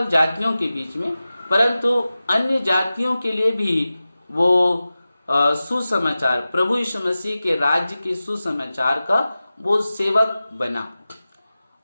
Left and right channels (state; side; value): inverted; both; correlation -0.95